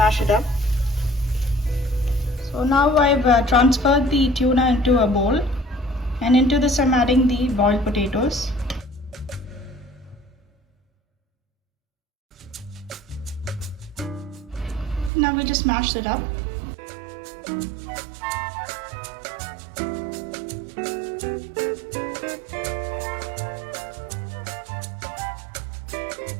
it up. So now I've transferred the tuna into a bowl, and into this I'm adding the boiled potatoes. Now we just mash that up.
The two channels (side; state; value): left; drops out; at 15.1 s